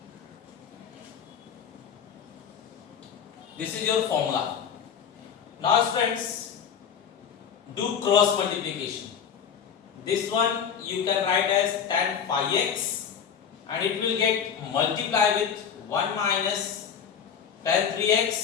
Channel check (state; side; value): quieter; right; 7.7 dB